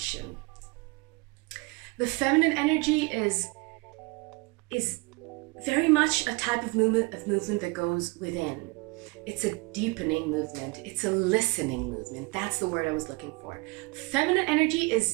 The feminine energy is very much a type of movement that goes within. It's a deepening movement. It's a listening movement. That's the word I was looking for. Feminine energy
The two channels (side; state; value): left; quieter; 26.2 dB